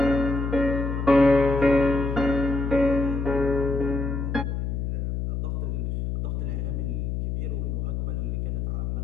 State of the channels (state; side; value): noise; left; hum, 2 dB below the sound